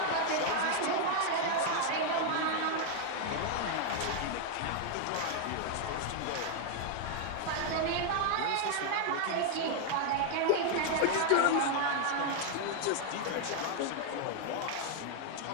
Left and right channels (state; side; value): different; both; correlation 0.00